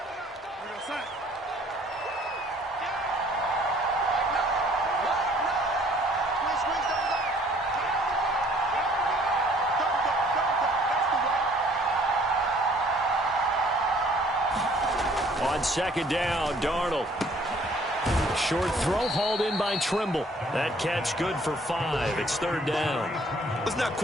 On 2nd down, Darnold. Short throw hauled in by Trimble. That catch good for 5. It's 3rd down. Let's not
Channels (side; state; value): both; normal; correlation 0.58